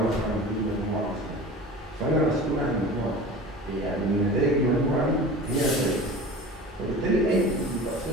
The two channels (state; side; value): normal; both; correlation 0.37